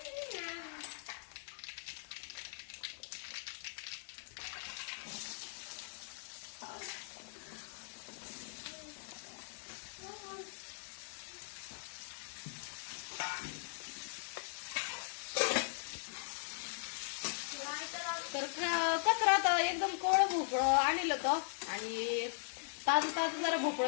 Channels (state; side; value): silent; right; digital silence